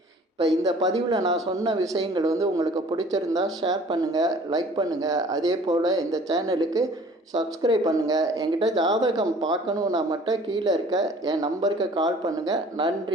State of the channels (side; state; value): both; normal; correlation 0.51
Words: இப்போ இந்த பதிவில் நான் சொன்ன விஷயங்கள் வந்து உங்களுக்கு பிடிச்சிருந்தா ஷேர் பண்ணுங்கள், லைக் பண்ணுங்கள். அதே போல் இந்த சேனலுக்கு சப்ஸ்கிரைப் பண்ணுங்கள். என்கிட்ட ஜாதகம் பார்க்கணுன்னா மட்டும் கீழே இருக்க என் நம்பருக்கு கால் பண்ணுங்கள்.